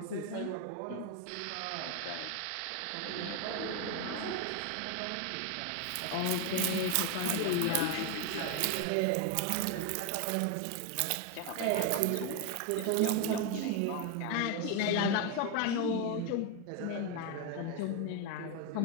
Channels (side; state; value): both; different; correlation 0.02